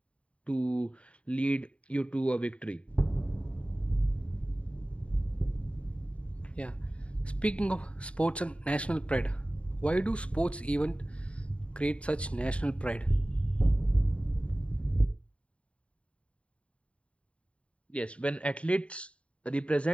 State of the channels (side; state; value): right; late; 0.061 ms